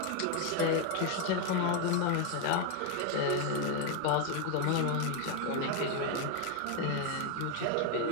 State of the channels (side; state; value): both; different; correlation 0.01